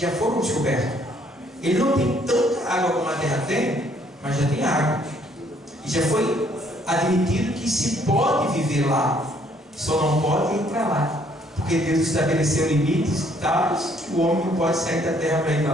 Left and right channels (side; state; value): both; normal; correlation 0.65